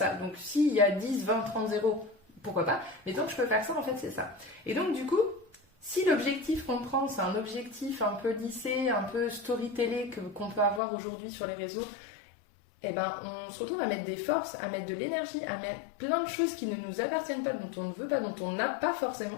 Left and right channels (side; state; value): right; drops out; at 10.8 s